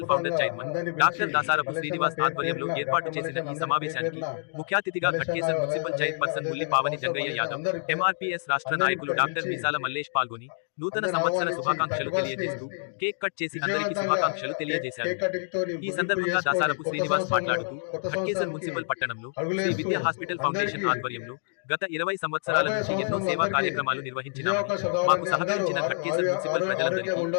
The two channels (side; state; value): right; silent; digital silence